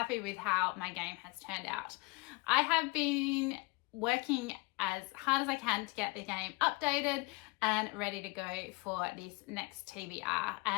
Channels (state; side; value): quieter; right; 26.3 dB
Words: with how my game has turned out. I have been working as hard as I can to get the game updated and ready to go for this next TBR,